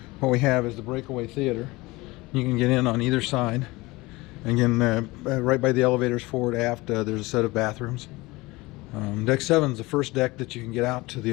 what we have is the Breakaway Theater. You can get in on either side. Again, right by the elevators forward aft, there's a set of bathrooms. Deck 7 is the first deck that you can get out to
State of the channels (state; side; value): quieter; right; 21.7 dB